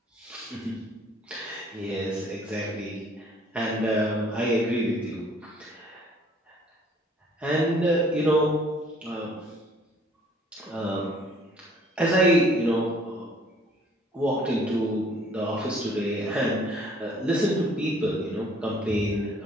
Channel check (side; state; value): both; normal; correlation 0.58